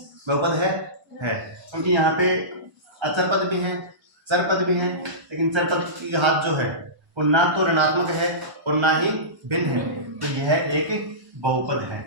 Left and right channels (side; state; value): left; late; 1.0 ms